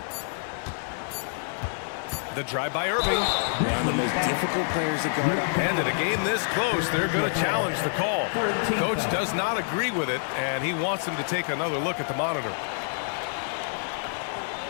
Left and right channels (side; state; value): right; silent; 60 dB below the other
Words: The drive by Irving. One of the most difficult players to guard up. And in a game this close, they're going to challenge the call. Coach does not agree with it, and he wants him to take another look at the monitor.